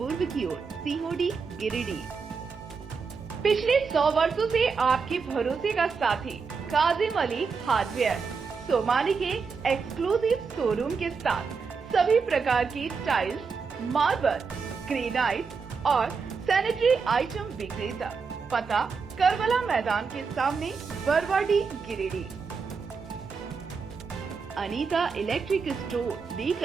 की ओर, सीहोडी, गिरिडीह। पिछले 100 वर्षों से आपके भरोसे का साथी काजिम अली हार्डवेयर, सोमानी के एक्सक्लूसिव शोरूम के साथ सभी प्रकार की टाइल्स, मार्बल, ग्रेनाइट और सैनिटरी आइटम विक्रेता। पता करबला मैदान के सामने, बरवाडी, गिरिडीह। अनीता इलेक्ट्रिक स्टोर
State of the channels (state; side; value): quieter; left; 5.2 dB